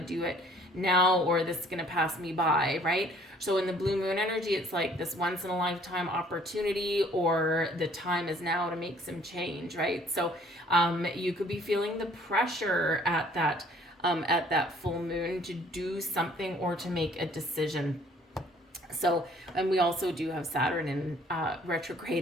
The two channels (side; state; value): both; normal; correlation 0.58